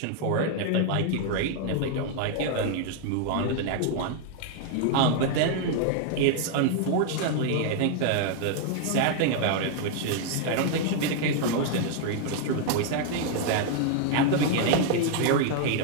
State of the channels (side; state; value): both; different; correlation 0.00